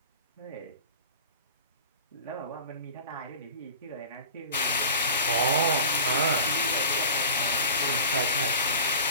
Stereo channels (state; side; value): inverted; both; correlation -0.37